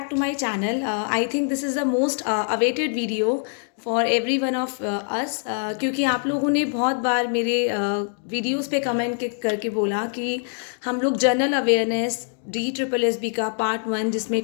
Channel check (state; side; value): silent; right; 58 dB below the other